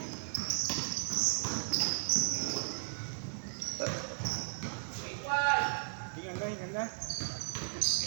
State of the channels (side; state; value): left; silent; digital silence